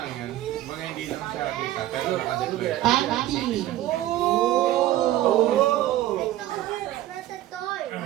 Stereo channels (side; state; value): left; quieter; 14.4 dB